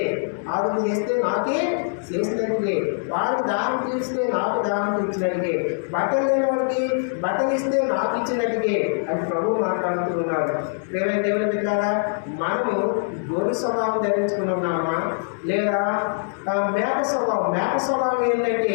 ఆవిడ చేస్తే నాకే చేసినట్టుగే, వారికి దానం తీస్తే నాకు దానం తీర్చినట్టుగే, బట్టలు లేని వాడికి బట్టలు ఇస్తే నాకు ఇచ్చినట్టుగే అని ప్రభు మాట్లాడుతూ ఉన్నాడు. ప్రేమ దేవుని పెట్టారా, మనము గొర్రె స్వభావం ధరించుకున్నామా లేదా మేక స్వభావం? మేక స్వభావం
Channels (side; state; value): right; silent; 63 dB below the other